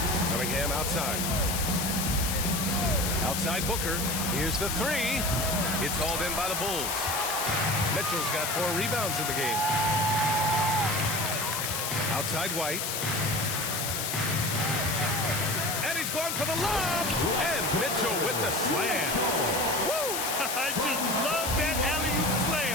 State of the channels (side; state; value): left; noise; hiss, 1 dB below the sound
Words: Cunningham outside. Outside Booker. Here's the three. It's hauled in by the Bulls. Mitchell's got 4 rebounds in the game. Outside White. And he's going for the lob. And Mitchell with the slam. Woo! I just love that alley-oop